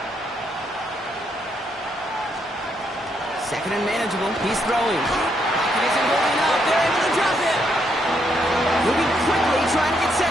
Second and manageable. He's throwing. Pocket isn't holding up. They're able to drop him. Moving quickly, trying to get set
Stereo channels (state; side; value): normal; both; correlation 0.76